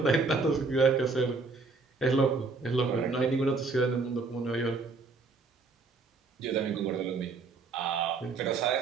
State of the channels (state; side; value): quieter; left; 4.2 dB